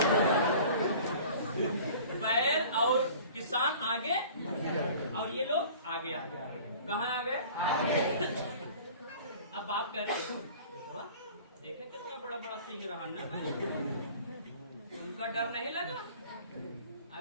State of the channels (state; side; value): inverted; both; correlation -0.46